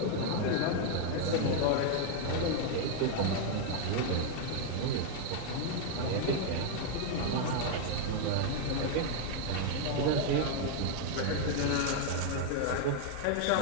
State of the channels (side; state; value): both; different; correlation 0.00